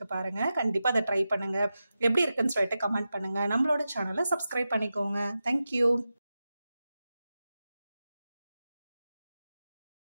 பாருங்கள். கண்டிப்பாக அதை ட்ரை பண்ணுங்கள். எப்படி இருக்குன்னு சொல்லிட்டு கமெண்ட் பண்ணுங்கள். நம்மளோட சேனலை சப்ஸ்கிரைப் பண்ணிக்கோங்க. தேங்க்யூ.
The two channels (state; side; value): inverted; both; correlation -0.92